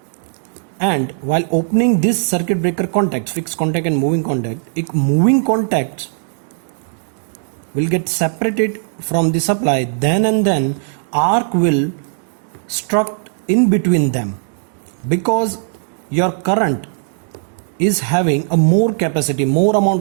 and while opening this circuit breaker contacts, fixed contact and moving contacts will get separated from the supply, then arc will struck in between them, because your current is having a more capacity, more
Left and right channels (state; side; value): silent; left; digital silence